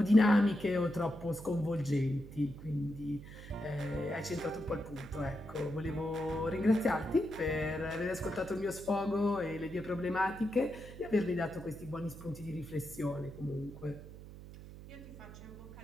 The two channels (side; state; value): right; noise; hum, 14 dB below the sound